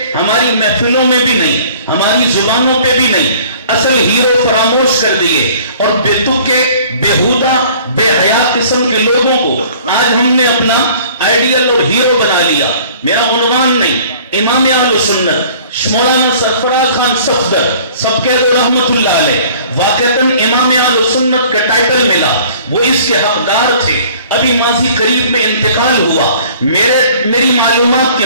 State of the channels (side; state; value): both; inverted; correlation -0.51